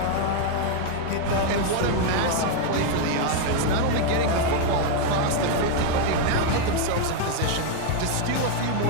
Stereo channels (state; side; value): different; both; correlation 0.01